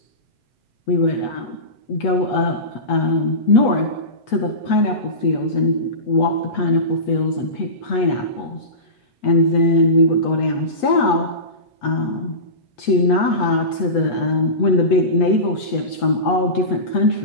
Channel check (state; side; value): late; right; 8.3 ms